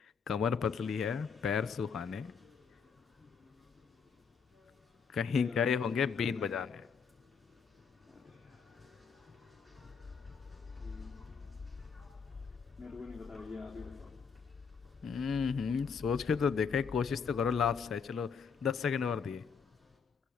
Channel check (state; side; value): quieter; right; 6.1 dB